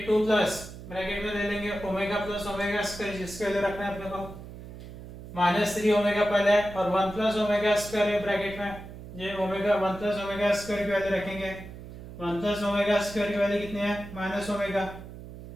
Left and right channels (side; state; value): right; noise; hum, 13 dB below the sound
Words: 2 प्लस ब्रैकेट में ले लेंगे ओमेगा प्लस ओमेगा स्क्वायर जिसके वैल्यू रखना है अपने को माइनस 3 ओमेगा पहले है और 1 प्लस ओमेगा स्क्वायर है ब्रैकेट में, ये ओमेगा 1 प्लस ओमेगा स्क्वायर की वैल्यू रखेंगे। 1 प्लस ओमेगा स्क्वायर की वैल्यू कितनी है minus omega,